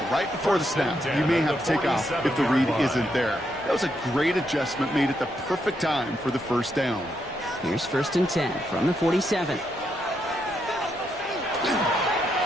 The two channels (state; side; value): normal; both; correlation 0.79